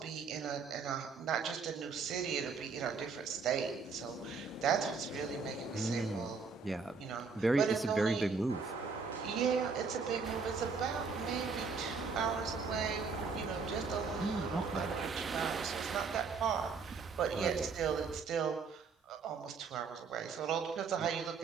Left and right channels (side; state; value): left; quieter; 5.0 dB